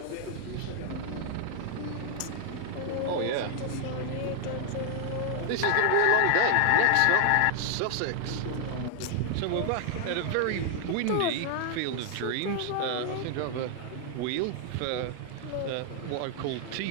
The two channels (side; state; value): both; different; correlation 0.00